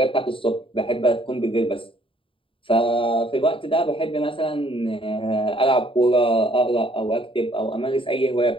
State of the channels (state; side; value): late; right; 0.25 ms